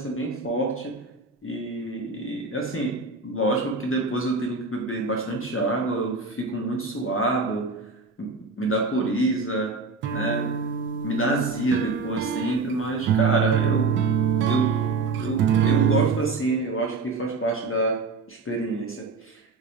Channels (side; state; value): left; quieter; 3.9 dB